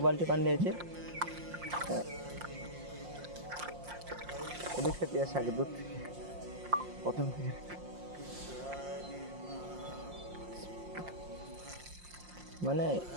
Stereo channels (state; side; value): late; left; 5.6 ms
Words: বালতি পানি দিয়েছে। এদিক থেকে আসে আগে দুধ থেকে, প্রথম থেকে। মানে